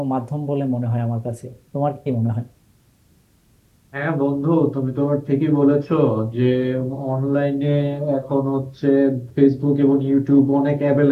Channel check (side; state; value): both; identical; correlation 1.00